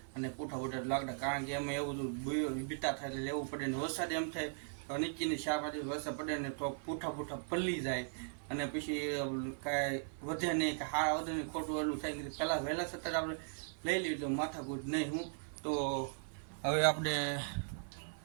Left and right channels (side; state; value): left; silent; 52 dB below the other